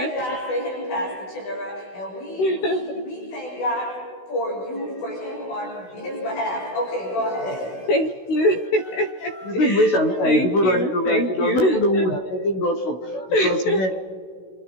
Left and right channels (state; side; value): late; right; 16 ms